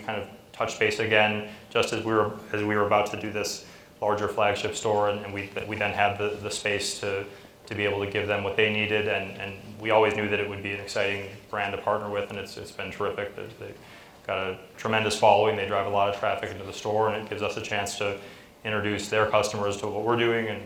kind of touched base again just as we were about to do this larger flagship store, and we then had the space to be able to give them what they needed, and we always knew that it would be an exciting brand to partner with, and it's been terrific. They've got a tremendous following. They drive a lot of traffic into the store, and it gives us a chance to introduce their customers to what we're doing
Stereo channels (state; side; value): identical; both; correlation 1.00